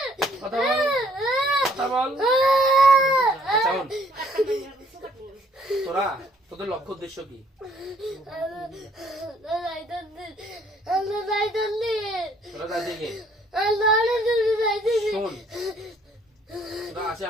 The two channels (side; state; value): both; normal; correlation 0.63